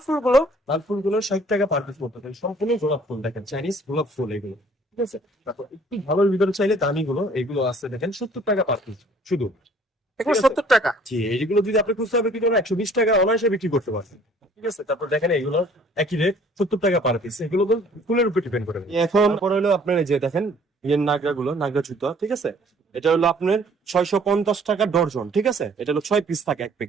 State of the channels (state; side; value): normal; both; correlation 0.56